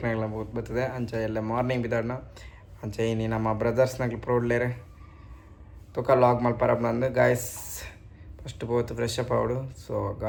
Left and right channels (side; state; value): both; identical; correlation 1.00